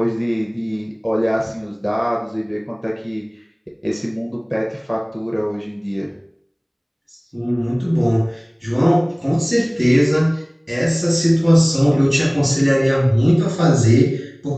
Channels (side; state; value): both; identical; correlation 1.00